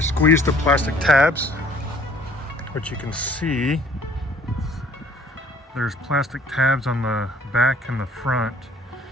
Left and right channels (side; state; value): both; normal; correlation 0.57